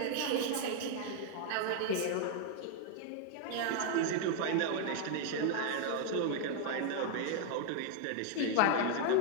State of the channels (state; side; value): different; both; correlation 0.00